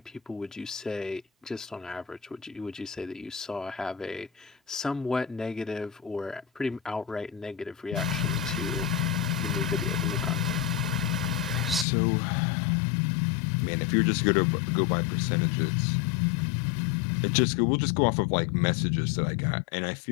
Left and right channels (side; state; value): right; drops out; at 11.9 s